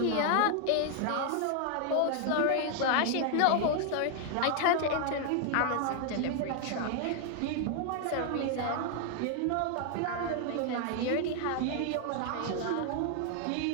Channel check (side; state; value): both; different; correlation 0.00